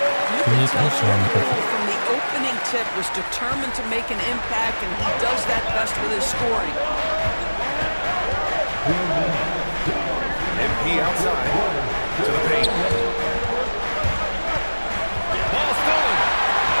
You can tell Jordan Poole from the opening tip was determined to make an impact, and he does that best with his scoring. MP outside to the paint. Ball stolen.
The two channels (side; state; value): both; inverted; correlation -1.00